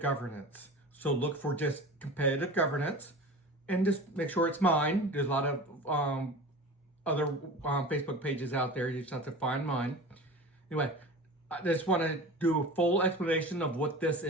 So look for just Competitive Governance and just make sure it's mine. There's a lot of other Facebook pages out there. You just have to find mine. Anyway, I just want to do a full explanation of what this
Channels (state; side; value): normal; both; correlation 0.35